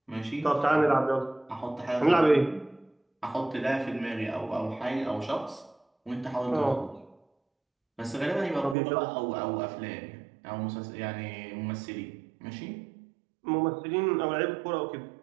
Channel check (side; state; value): left; drops out; at 8.8 s